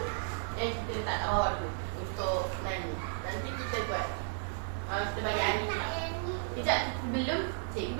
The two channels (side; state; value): left; silent; 55 dB below the other